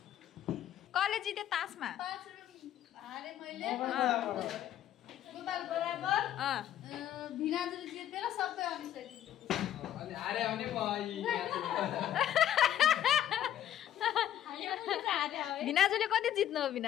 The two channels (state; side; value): quieter; right; 11.3 dB